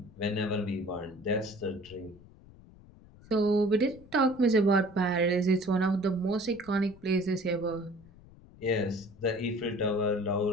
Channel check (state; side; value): noise; left; rumble, 22 dB below the sound